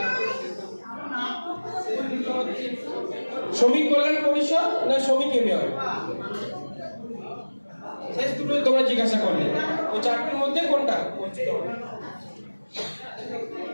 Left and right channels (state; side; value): inverted; both; correlation -1.00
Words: শ্রমিক কল্যাণ পরিষদ না শ্রমিক ইউনিয়ন? শেষ দুটো তোমরা জিজ্ঞাসা করলে, ওই চারটির মধ্যে কোনটা?